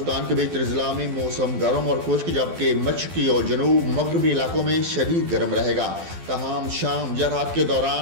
के बेशतर ज़िला में मौसम गर्म और खुश्क, जबकि मशरक़ी और जनूब मगरबी इलाकों में शदीद गर्म रहेगा। तहम शाम या रात के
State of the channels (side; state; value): left; late; 12 ms